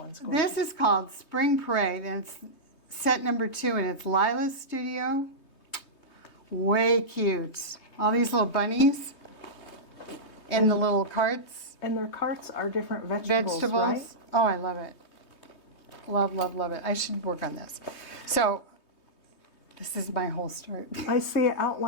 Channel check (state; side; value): late; right; 3.2 ms